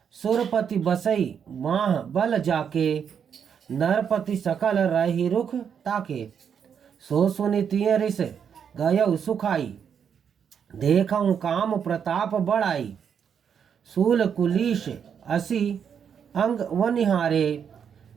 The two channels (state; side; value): quieter; left; 7.6 dB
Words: सुरपति बसई माह बल जाके, नरपति सकल रही रुख ताके। सो सुनि तिय रिस गयौ सुखाई, देखऊं काम प्रताप बढ़ाई। सूल कुलीश असी अंग वनिहारे,